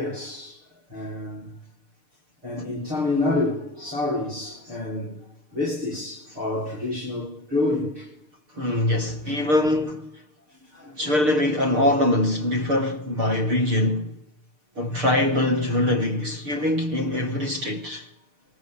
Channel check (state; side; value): late; left; 6.7 ms